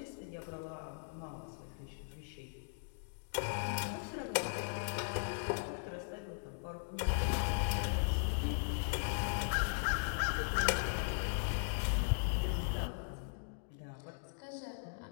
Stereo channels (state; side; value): silent; right; digital silence